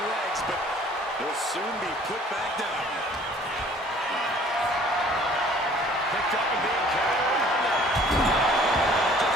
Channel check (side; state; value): both; normal; correlation 0.54